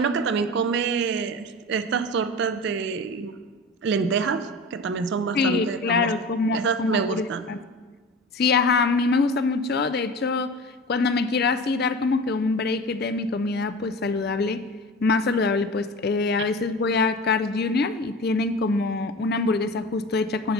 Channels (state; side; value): normal; both; correlation 0.33